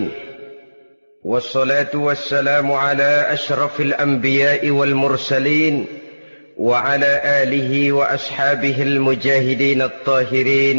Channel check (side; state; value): both; inverted; correlation -1.00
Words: Wassalatu wassalamu ala ashrafil anbiya'i wal mursalin wa ala alihi wa ashabihil mujahidin